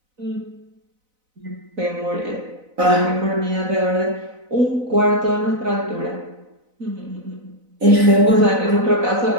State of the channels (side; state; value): left; late; 4.0 ms